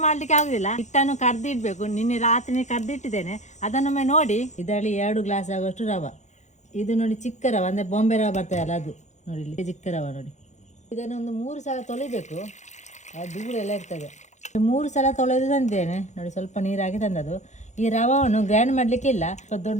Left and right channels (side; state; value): right; late; 0.34 ms